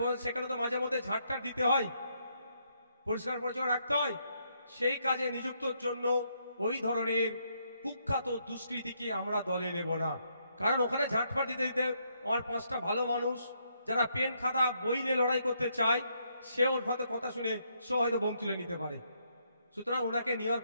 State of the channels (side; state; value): both; inverted; correlation -0.75